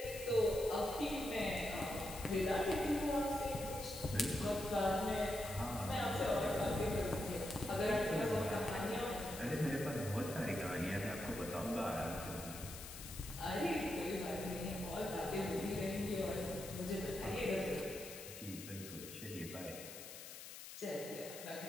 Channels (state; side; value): noise; left; hiss, 11 dB below the sound